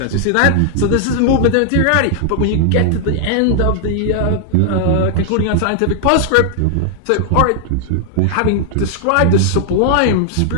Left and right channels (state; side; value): different; both; correlation 0.00